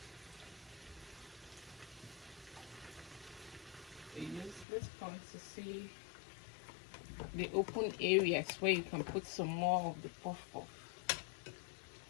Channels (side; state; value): right; drops out; at 4.7 s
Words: This point to see the open areas where you can put some more of the puff puff.